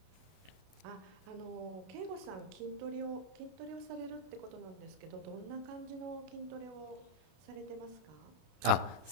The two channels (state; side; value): late; left; 32 ms